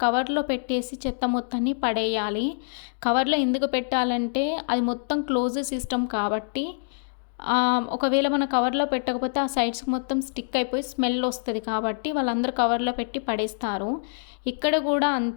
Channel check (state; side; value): silent; right; digital silence